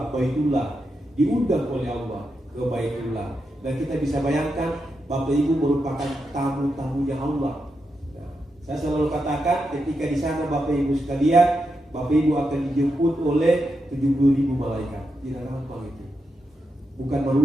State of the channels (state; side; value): normal; both; correlation 0.86